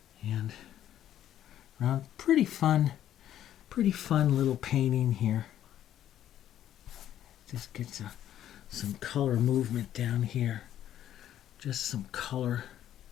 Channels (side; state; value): right; quieter; 11.4 dB